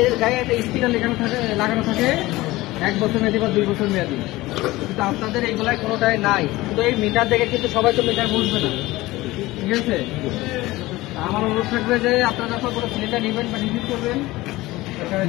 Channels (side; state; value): right; quieter; 18.9 dB